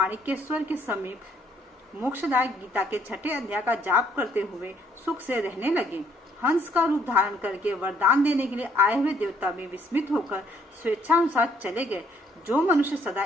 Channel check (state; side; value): normal; both; correlation 0.65